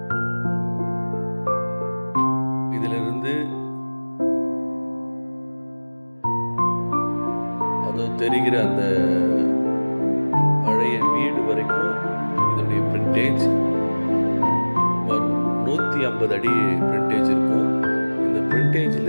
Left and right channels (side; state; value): both; inverted; correlation -1.00